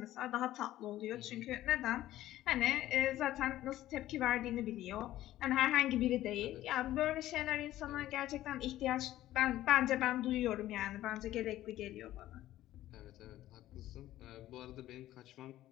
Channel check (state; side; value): quieter; right; 14.3 dB